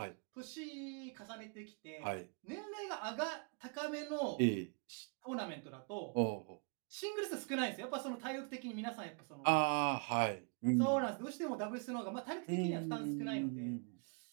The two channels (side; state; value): left; quieter; 39.0 dB